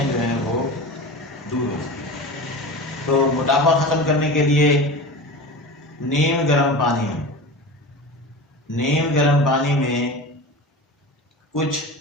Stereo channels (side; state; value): both; normal; correlation 0.31